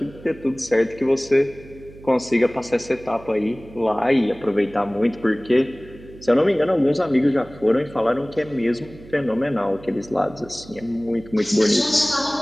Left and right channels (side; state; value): right; noise; hum, 20 dB below the sound